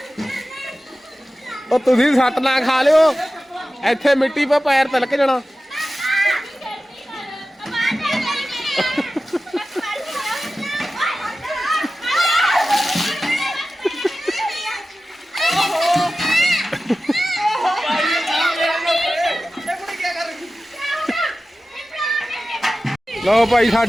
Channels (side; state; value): both; normal; correlation 0.94